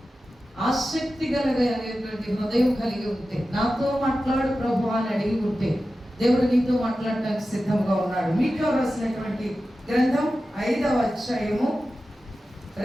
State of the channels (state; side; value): normal; both; correlation 0.93